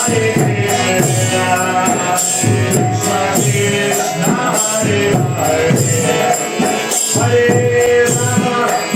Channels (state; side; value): identical; both; correlation 1.00